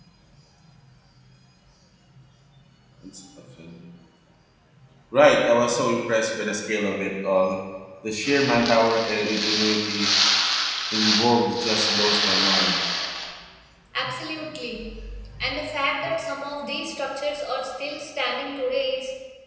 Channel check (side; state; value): both; identical; correlation 1.00